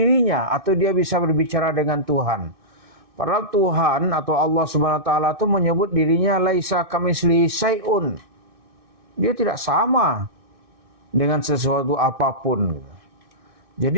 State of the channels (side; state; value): left; late; 2.6 ms